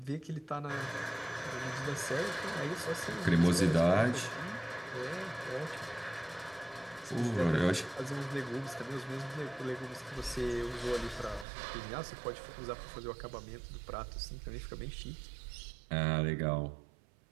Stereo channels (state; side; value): drops out; left; at 11.5 s